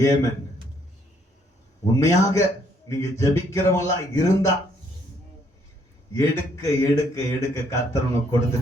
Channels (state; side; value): normal; both; correlation 0.68